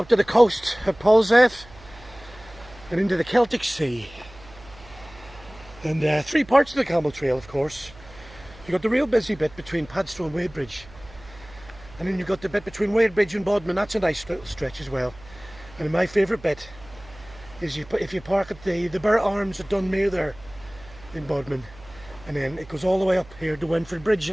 to the coast at Polzeath and into the Celtic Sea. And 3 parts of the Camel Trail, of course. You've got the real busy bit between Padstow and Wadebridge, and then you've got the bit between Wadebridge and Bodmin. That's a nice stretch as well. And my favourite bit is if you park at the Burr Arms at Dunmere there in Bodmin, and then it goes all the way up here to Wentford Bridge,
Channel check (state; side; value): noise; right; hum, 21 dB below the sound